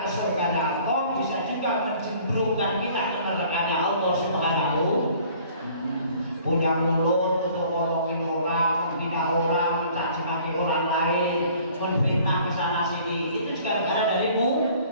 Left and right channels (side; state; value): both; inverted; correlation -0.54